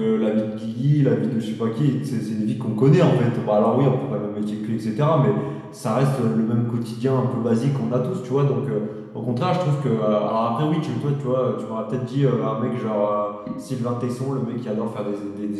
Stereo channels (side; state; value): both; identical; correlation 1.00